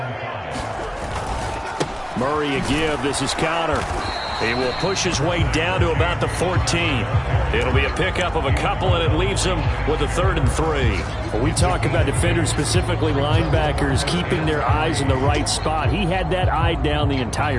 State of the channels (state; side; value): identical; both; correlation 1.00